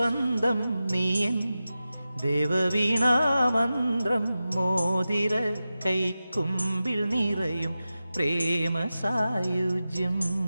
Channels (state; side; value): inverted; both; correlation -0.93